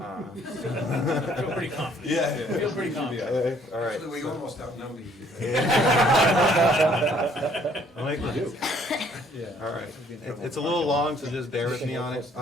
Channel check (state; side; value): normal; both; correlation 0.62